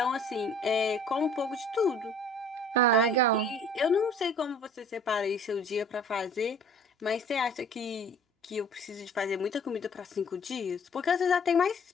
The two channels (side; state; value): both; normal; correlation 0.51